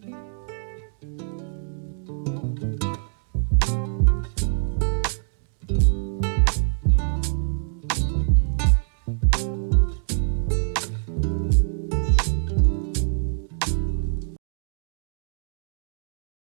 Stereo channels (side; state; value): left; silent; digital silence